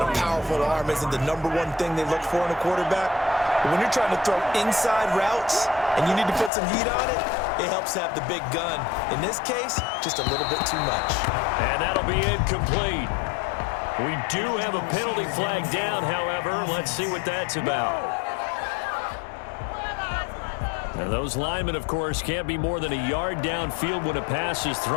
a powerful arm isn't the #1 thing they look for in a quarterback. But when you're trying to throw inside routes and you need to put some heat on it, it helps to have the big gun. In this case, just a little bit too much. And that'll be incomplete. We do have a penalty flag down, however. Let's see what that's about. Now, those linemen, of course, can't be more than a yard downfield when a pass is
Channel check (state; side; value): drops out; right; at 6.5 s